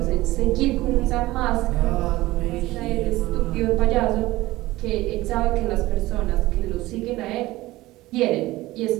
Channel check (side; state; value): left; quieter; 18.1 dB